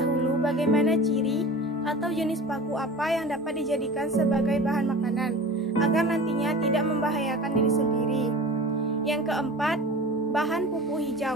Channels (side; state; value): both; normal; correlation 0.37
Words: bagaimana ciri atau jenis paku apa yang dapat dijadikan sebagai bahan makanan, agar nantinya tidak membahayakan diri sendiri. Yang keempat, bahan pupuk